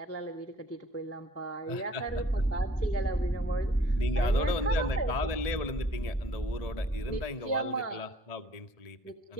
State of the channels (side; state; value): right; late; 1.7 ms